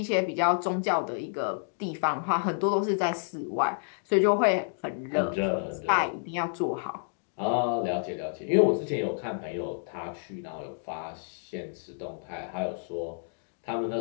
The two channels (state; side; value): silent; right; digital silence